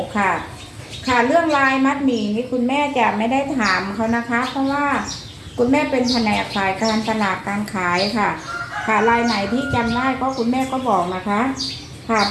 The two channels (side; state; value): both; identical; correlation 1.00